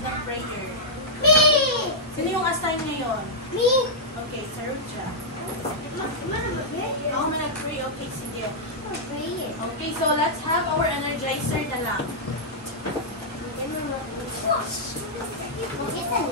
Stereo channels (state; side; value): normal; both; correlation -0.09